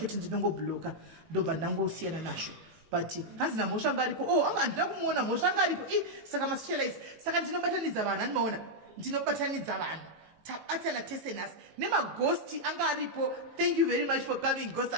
ndinongobloka ndobva ndangosiyana nazvo but hazina mhosva anga aripo anga handina kumuona mhosva anga aripo saka masocialize saka ndinobatanidza vanhu handimaona ndinobatanidza vanhu tabatana tese nhasi nemagosti anga aripo. Thank you very much for coming ghost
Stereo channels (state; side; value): late; left; 18 ms